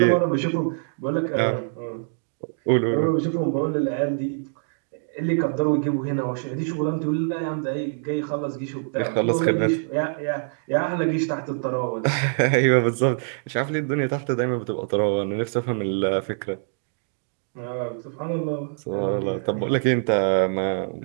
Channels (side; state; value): left; silent; digital silence